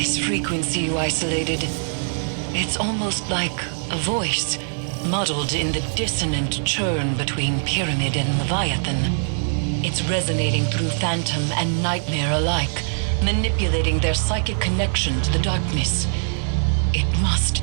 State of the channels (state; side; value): silent; left; 59 dB below the other